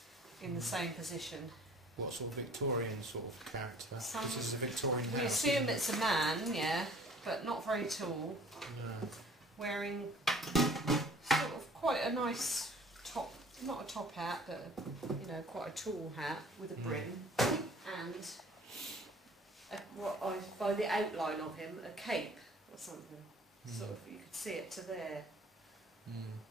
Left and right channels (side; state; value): both; normal; correlation 0.51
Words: in the same position. What sort of Victorian sort of character? This is a Victorian We house. assume isn't it? it's a man, yeah, but not very tall, No. wearing sort of quite a nice top, not a top hat, but you know, quite a tall hat with a brim, and by the outline of him, a cape or something. Sort of, you could see it to there.